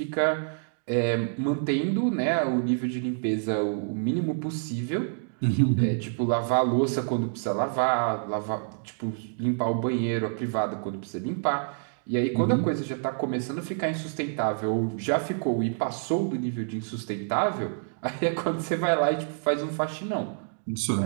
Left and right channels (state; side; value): silent; left; digital silence